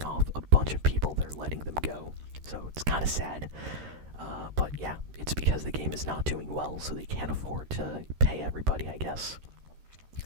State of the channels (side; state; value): left; late; 13 ms